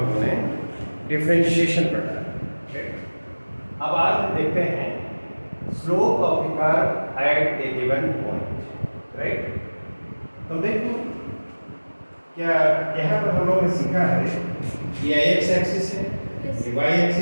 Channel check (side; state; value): both; inverted; correlation -1.00